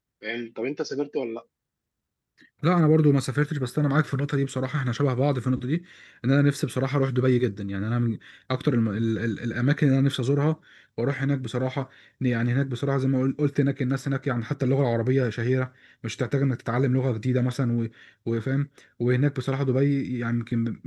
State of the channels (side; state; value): both; identical; correlation 1.00